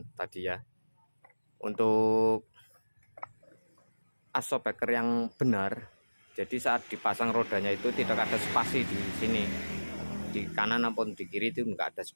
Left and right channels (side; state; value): both; inverted; correlation -1.00